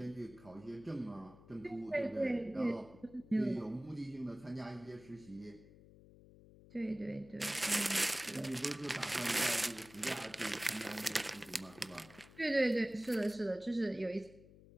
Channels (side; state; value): left; noise; hum, 21 dB below the sound